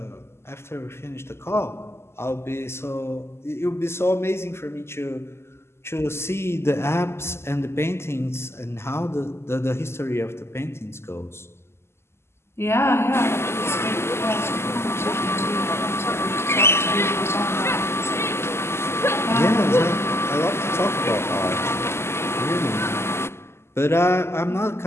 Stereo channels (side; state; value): right; late; 0.12 ms